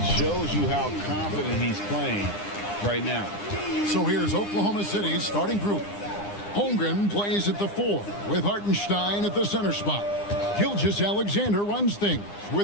shows you how confident he's playing right now. So here's Oklahoma City's starting group. Holmgren plays at the 4 with Hartenstein at the center spot. Gilgeous-Alexander runs things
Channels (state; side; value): late; right; 9.8 ms